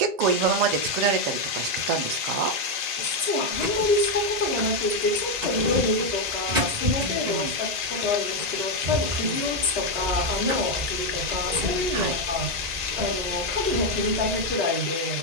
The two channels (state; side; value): late; left; 1.9 ms